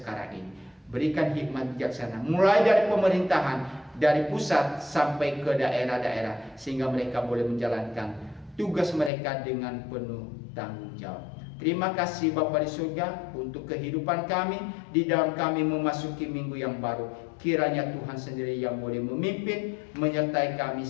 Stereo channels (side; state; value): right; drops out; at 9.1 s